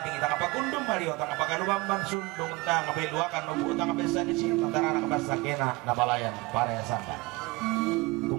ita kapagundong Mario tang kapagalubamban sundong tang kabeluakan nubu tang kapesa di sini tantara na kapasa kena na balayan para ya sangka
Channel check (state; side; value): quieter; left; 23.8 dB